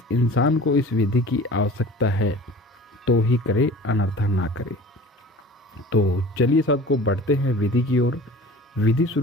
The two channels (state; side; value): normal; both; correlation 0.42